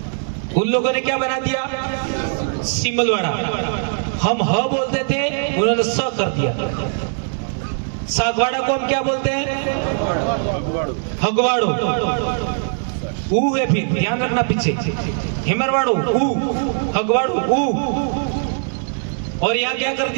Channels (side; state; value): left; silent; 65 dB below the other